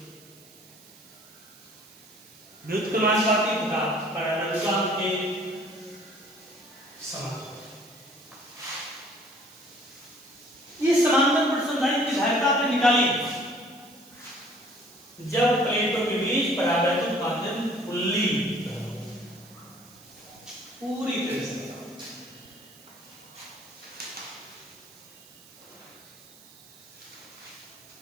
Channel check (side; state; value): right; noise; hiss, 23 dB below the sound